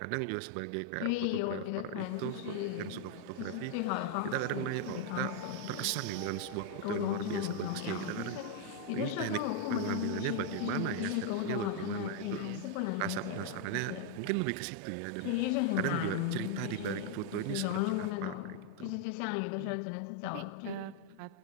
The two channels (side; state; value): both; different; correlation 0.00